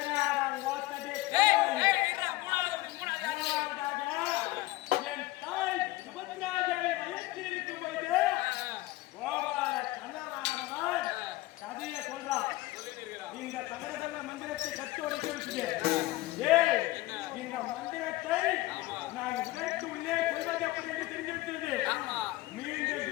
என் தாய் சுபத்ராஜை வயசில் இருக்கும் போது கதையை சொல்றான் இந்த சகரதன மந்திரத்தை கட்டு உடைச்சிருச்சு இந்த மந்திரத்தை நான் உடைத்து உள்ளே கொள்வது எப்படி என்று தெரிஞ்சிருக்கிறது மீண்டும்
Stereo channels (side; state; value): right; quieter; 18.3 dB